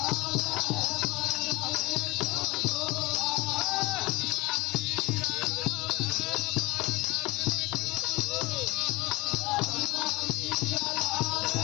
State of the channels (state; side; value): quieter; right; 21.9 dB